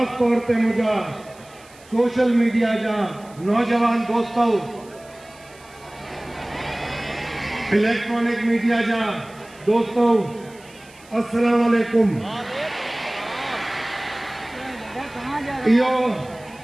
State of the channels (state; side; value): noise; right; hiss, 25 dB below the sound